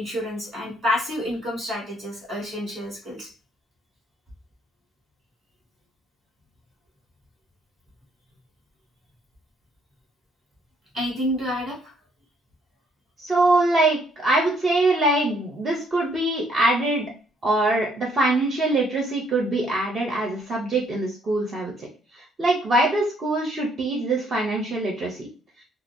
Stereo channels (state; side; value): normal; both; correlation 0.68